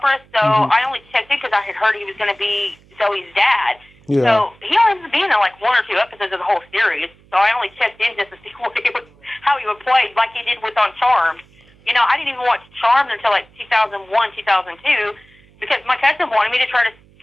So I only checked in because I had heard he was going to be Zoe's dad. Yeah. So he only was being in like one or two episodes of the whole series. So I only checked in just to see how he would play, like he did with on Charmed. I didn't even watch Charmed until like 2001, 2002, because my cousin wanted me to try to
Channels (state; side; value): noise; right; hum, 29 dB below the sound